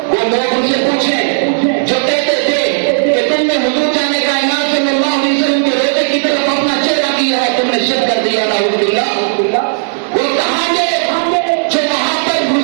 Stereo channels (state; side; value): silent; left; digital silence